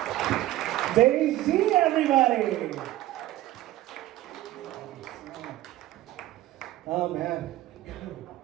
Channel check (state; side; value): quieter; left; 15.5 dB